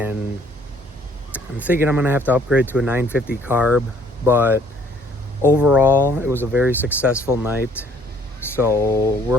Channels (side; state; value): both; normal; correlation 0.60